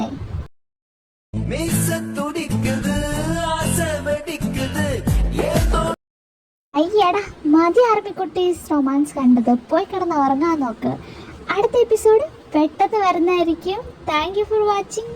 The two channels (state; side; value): identical; both; correlation 1.00